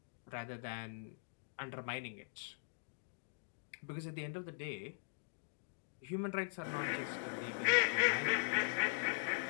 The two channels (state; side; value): silent; right; digital silence